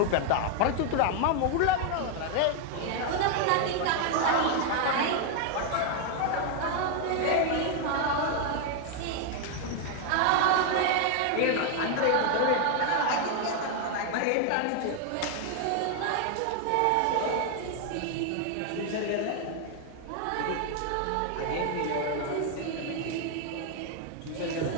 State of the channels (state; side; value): different; both; correlation 0.00